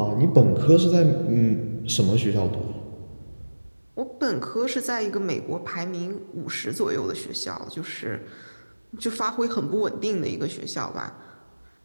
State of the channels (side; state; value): both; inverted; correlation -1.00